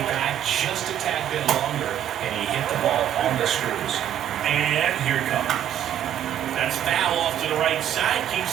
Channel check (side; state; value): left; quieter; 10.5 dB